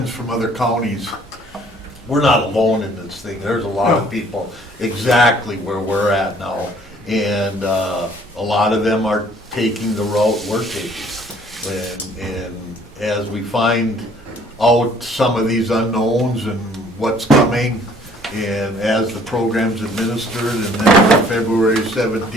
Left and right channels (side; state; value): both; normal; correlation 0.58